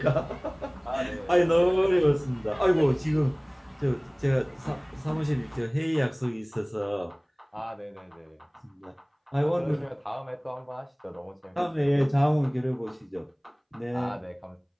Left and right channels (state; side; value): identical; both; correlation 1.00